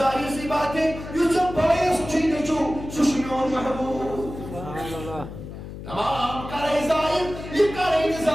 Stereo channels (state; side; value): noise; left; hum, 11 dB below the sound